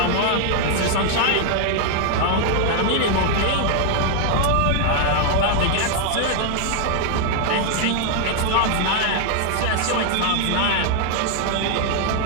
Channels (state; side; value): different; both; correlation 0.00